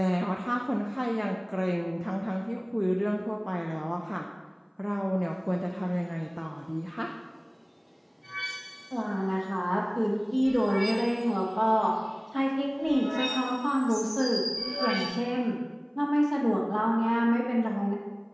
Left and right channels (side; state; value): both; identical; correlation 1.00